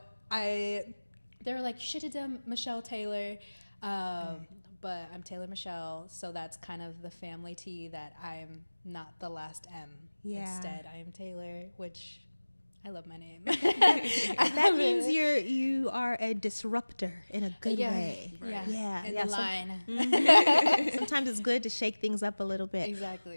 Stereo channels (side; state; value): both; inverted; correlation -1.00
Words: they were like, you should have done Michelle Taylor, but I'm Taylor Michelle, so that's kind of the family T, that I'm not the last M. Yeah. Instead, I am Taylor, which I love my name. That means you are a disruptor in a good way. Yeah. Yeah. In yeah, the line. Sometimes it's good to shake things up a little bit. Exactly.